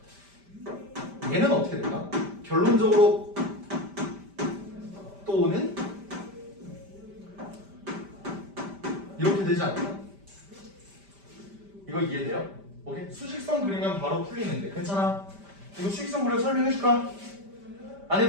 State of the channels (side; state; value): left; late; 5.1 ms